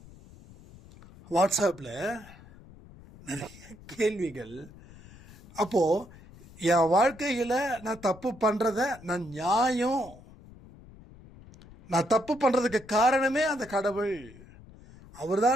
வாட்ஸ்அப்ல நிறைய கேள்விகள். அப்போ என் வாழ்க்கையில நான் தப்பு பண்றத நான் தப்பு பண்றதுக்கு காரணமே அந்த கடவுள். அவர்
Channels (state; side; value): noise; left; rumble, 21 dB below the sound